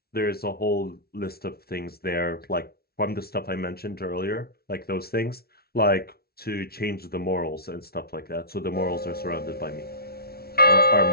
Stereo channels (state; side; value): late; right; 0.45 ms